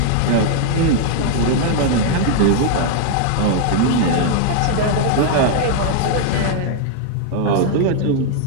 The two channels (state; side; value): different; both; correlation 0.00